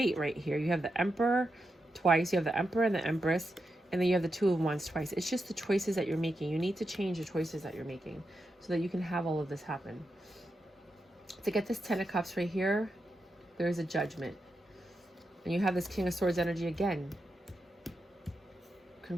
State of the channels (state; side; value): normal; both; correlation 0.87